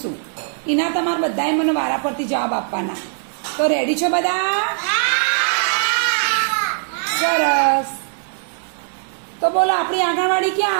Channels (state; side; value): silent; left; digital silence